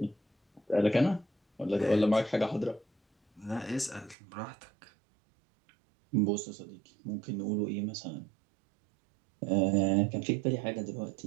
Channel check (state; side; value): drops out; left; at 4.2 s